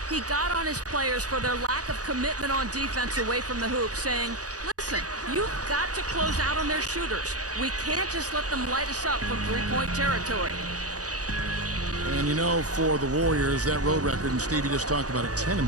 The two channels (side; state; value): left; late; 0.67 ms